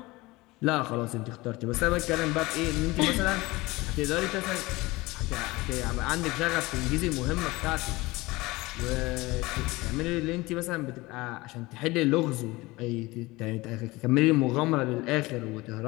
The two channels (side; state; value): right; quieter; 21.3 dB